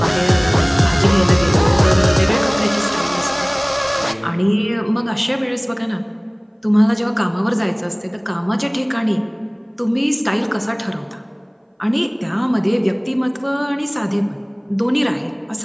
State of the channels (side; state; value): both; identical; correlation 1.00